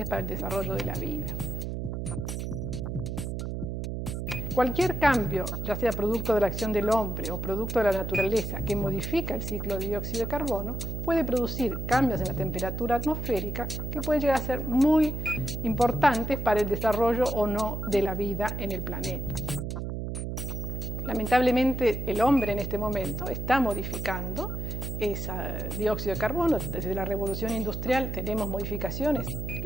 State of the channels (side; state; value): right; noise; hum, 4 dB below the sound